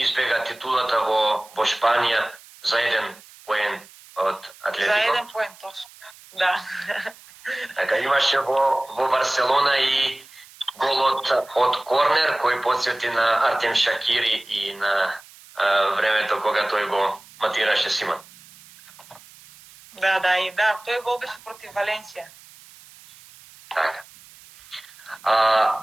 титулата во Шпанија за 1 поен од Атлетико. За 1 поен, точно. Да. Така имаше во Барселона и голот од корнер кој потсети на Артем Шакири и на времето кога тој го матираше Симон. Да, тој гол беше против Валенсија. Така.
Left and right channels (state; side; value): noise; right; hiss, 23 dB below the sound